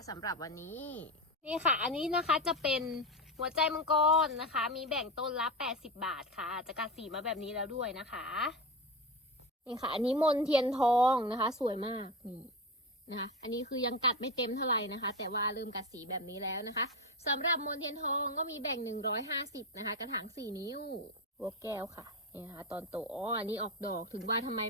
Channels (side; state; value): both; normal; correlation 0.19